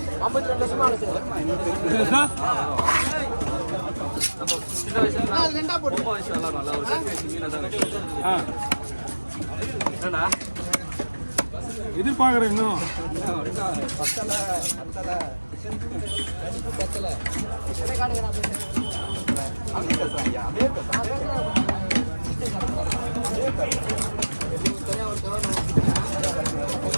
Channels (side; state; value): both; inverted; correlation -1.00